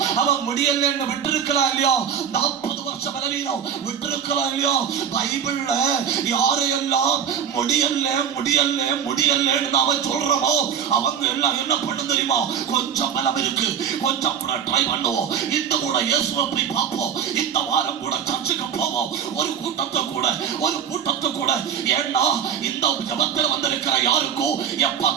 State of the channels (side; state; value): left; quieter; 8.0 dB